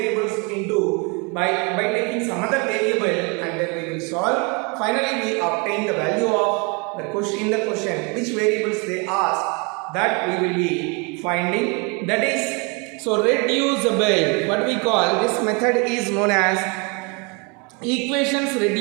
into by taking some other variable, and then we will solve. Finally we obtain the value of the question which variables they ask, that we will be finding. That is, so reducible, what we call this method is known as equations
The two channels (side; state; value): left; quieter; 31.8 dB